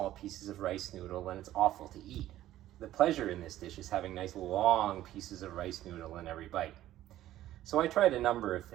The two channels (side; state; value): left; quieter; 13.7 dB